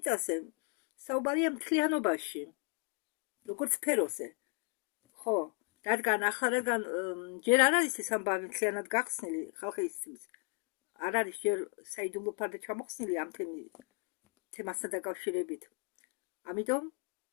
საუბარია მთლიანობაში, როგორც სფეროზე. ხო, რადგან ჯერ არ არის ეს ამბავი მთლიანად გახსნილი ხალხისთვის, არ არის ჯერ საიდუმლო ფარდა ჩამოხსნილი ამ თემასთან დაკავშირებით. ამიტომ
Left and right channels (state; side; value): quieter; right; 38.1 dB